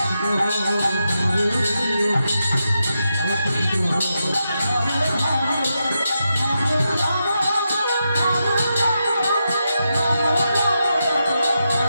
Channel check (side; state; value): both; inverted; correlation -0.86